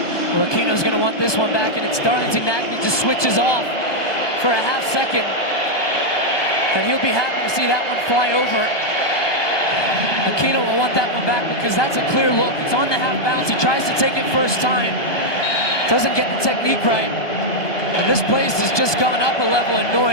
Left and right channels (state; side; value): late; right; 1.2 ms